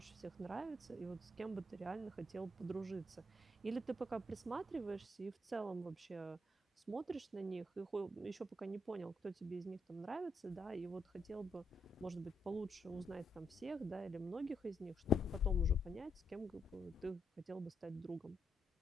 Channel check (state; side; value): normal; both; correlation 0.79